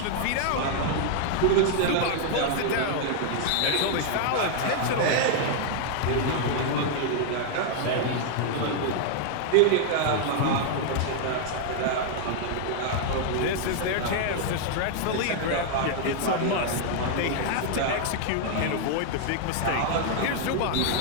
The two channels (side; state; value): both; different; correlation 0.00